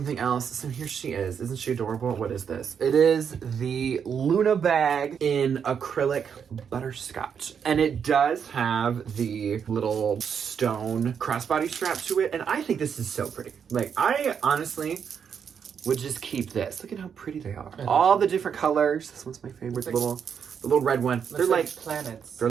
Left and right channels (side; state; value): left; quieter; 7.3 dB